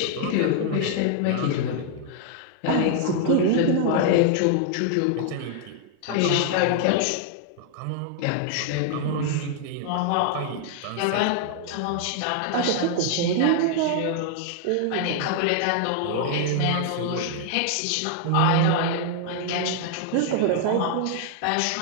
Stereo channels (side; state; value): both; different; correlation 0.00